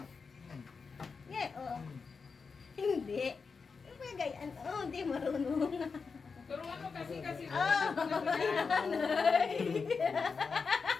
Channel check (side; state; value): right; quieter; 5.1 dB